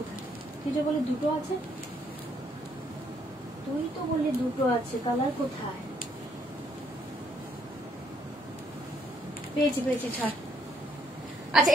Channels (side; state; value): both; normal; correlation 0.70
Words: কি যে বলে দুটো আছে, তুই তো বললি দুটো আছে, কালার কোথায়, পেয়েছি পেয়েছি ছাড়। আচ্ছা